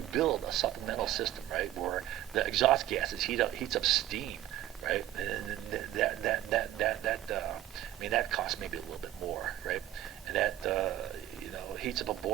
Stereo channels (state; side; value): quieter; left; 13.2 dB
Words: build a supplemental system, right, where the exhaust gases heats up steam, right? And that costs maybe a little bit more, right? And that heats up a